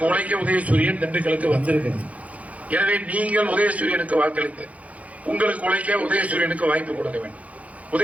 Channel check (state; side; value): late; left; 0.068 ms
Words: உழைக்க உதயசூரியன் திண்டுக்கலுக்கு வந்திருக்கிறது. எனவே நீங்கள் உதயசூரியனுக்கு வாக்களித்து உங்களுக்கு உழைக்க உதயசூரியனுக்கு வாய்ப்பு கொடுக்க வேண்டும்.